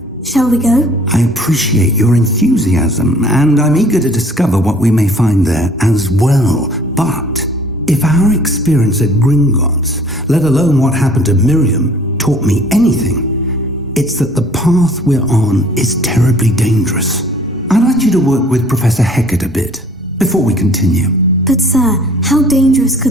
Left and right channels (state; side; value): normal; both; correlation 0.54